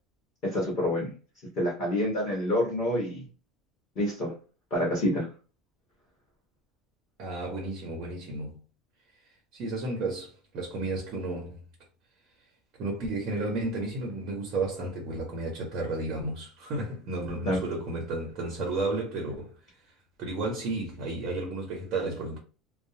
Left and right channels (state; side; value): normal; both; correlation 0.33